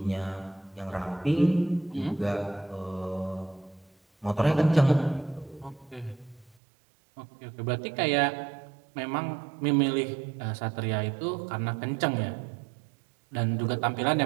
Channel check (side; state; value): left; drops out; at 6.6 s